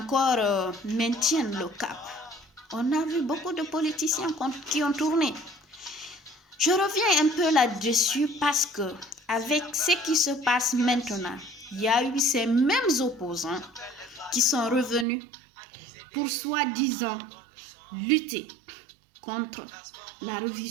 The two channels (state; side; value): drops out; left; at 15.1 s